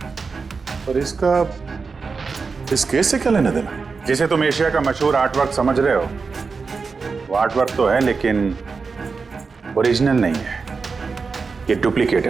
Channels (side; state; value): left; quieter; 4.8 dB